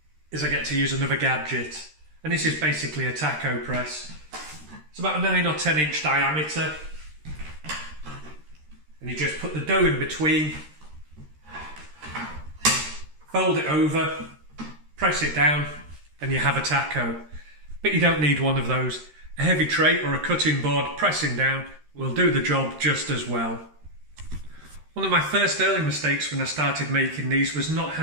is I get to use another gadget, and this is basically a taco press. It's about a 9 or 10 inch diameter, and you just put the dough in between, fold it over, press it down, and you have a taco. But you don't need one of those. A heavy tray or a cutting board pressing down will do the job just as well. One of my first early mistakes when I started making these was not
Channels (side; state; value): left; late; 13 ms